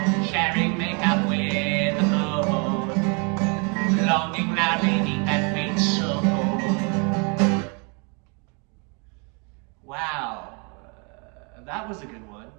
Sharing makeup with the moon, longing loudly deep that faint soul. Wow, that was a good one.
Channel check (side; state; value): left; quieter; 34.1 dB